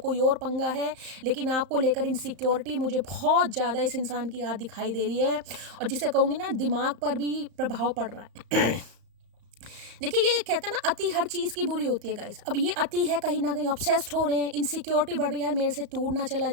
और पंगा है, लेकिन आपको लेकर इनसिक्योरिटी मुझे बहुत ज़्यादा इस इंसान की याद दिखाई दे रही है। और जिसे कहूँगी ना, दिमाग पर भी प्रभाव पड़ रहा है। देखिए, ये कहते हैं ना, अति हर चीज़ की बुरी होती है गाइस। अब ये अति है, कहीं ना कहीं ऑब्सेस्ड हो रहे हैं, इनसिक्योरिटी बढ़ रही है, यार मेरे से टूट ना चला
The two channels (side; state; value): left; late; 35 ms